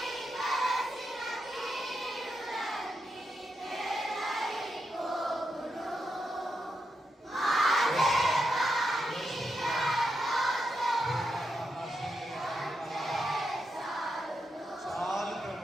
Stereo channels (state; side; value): normal; both; correlation 0.84